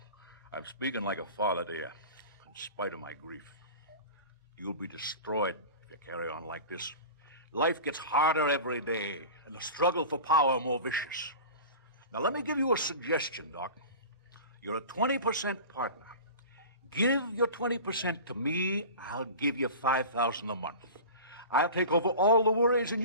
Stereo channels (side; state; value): both; inverted; correlation -0.35